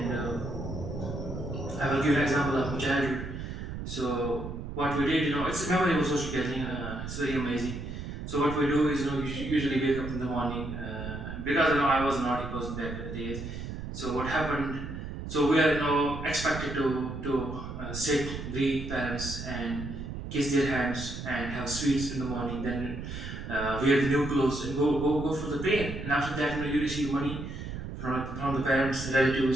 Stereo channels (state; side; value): noise; right; rumble, 7 dB below the sound